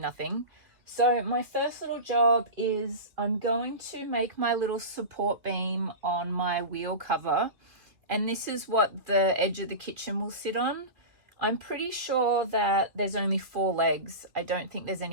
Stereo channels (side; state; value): left; late; 2.6 ms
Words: So my first little job is I'm going to make my little support beam on my wheel cover, and this is what the edge of the kitchen will sit on. I'm pretty sure that there's only 4 legs. I don't think there's